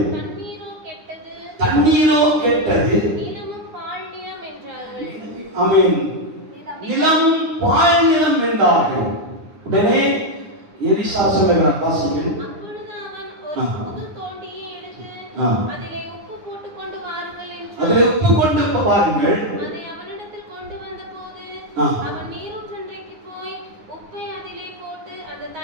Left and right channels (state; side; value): late; left; 9.8 ms